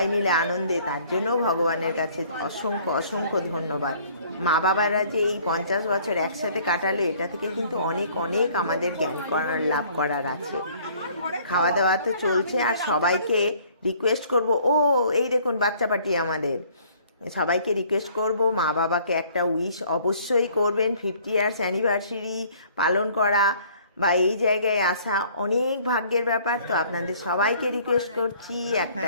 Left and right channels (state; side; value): inverted; both; correlation -0.57